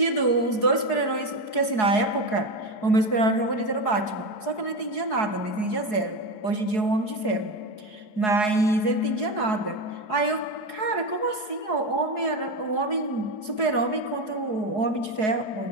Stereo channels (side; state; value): right; late; 4.7 ms